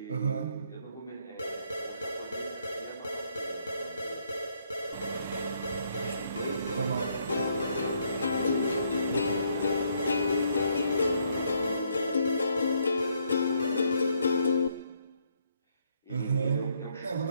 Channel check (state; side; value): inverted; both; correlation -0.72